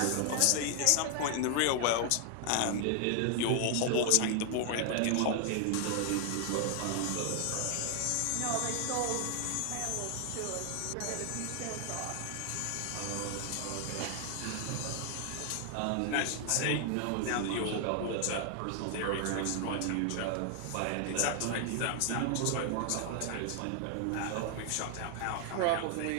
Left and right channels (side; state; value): both; different; correlation 0.00